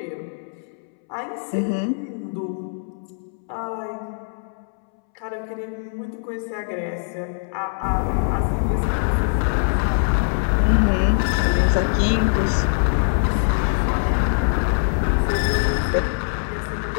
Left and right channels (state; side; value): silent; right; 64 dB below the other